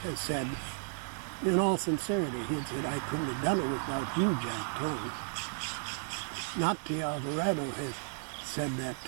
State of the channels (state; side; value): silent; left; digital silence